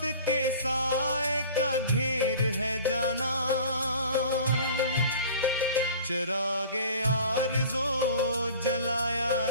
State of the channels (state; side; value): inverted; both; correlation -0.43